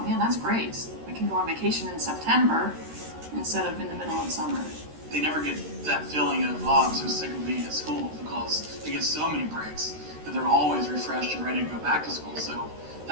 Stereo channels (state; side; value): late; left; 13 ms